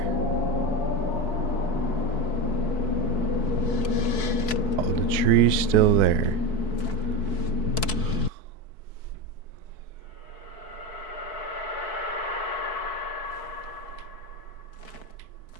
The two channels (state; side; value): late; right; 4.6 ms